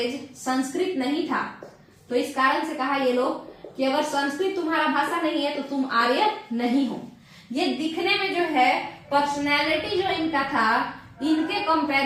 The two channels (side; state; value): both; identical; correlation 1.00